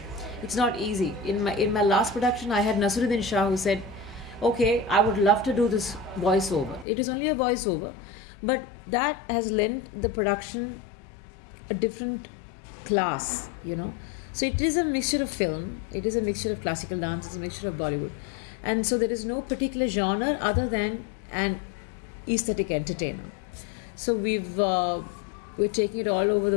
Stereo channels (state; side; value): drops out; right; at 6.9 s